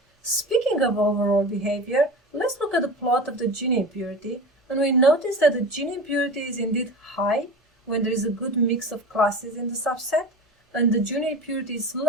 Speaking of overall behavior, let's look at the plot of the Gini impurity, and we notice that the Gini impurity is indeed high when there is a good mix of classes in the subset, and the Gini impurity is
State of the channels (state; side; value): normal; both; correlation 0.33